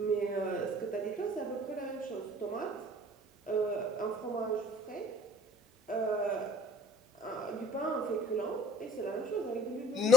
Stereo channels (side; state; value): both; normal; correlation 0.50